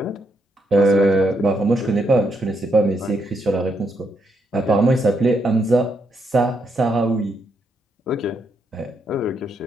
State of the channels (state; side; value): normal; both; correlation 0.78